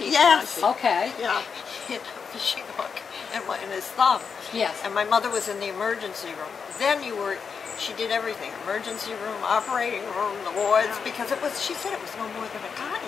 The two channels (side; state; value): right; quieter; 6.0 dB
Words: Okay. Yeah, he had a fishing hook in his thumb. Yes. And my mother was in the emergency room. Then she did everything, emergency room, operating room, the wards, because she said it was no more than a